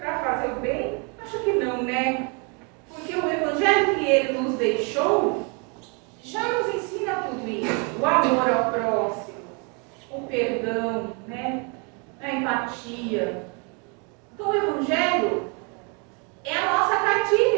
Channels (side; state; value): left; quieter; 34.4 dB